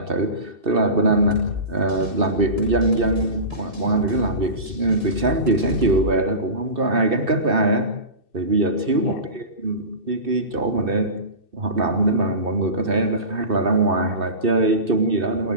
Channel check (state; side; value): late; left; 2.6 ms